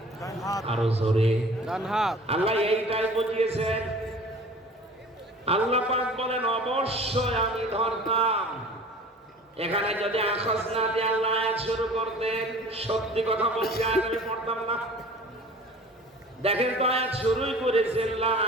আরো জোরে ডান হাত। আল্লাহ এইটাই বুঝিয়েছেন। আল্লাহ পাক বলেন অবশ্যই আমি ধরতাম। এখানে যদি আখাজ না দিয়ে আল্লাহ আয়াত শুরু করতেন, সত্যি কথা বলছি আয়াত আমি পড়তাম না। দেখেন তো আয়াত শুরুই করেছেন লা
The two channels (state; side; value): normal; both; correlation 0.44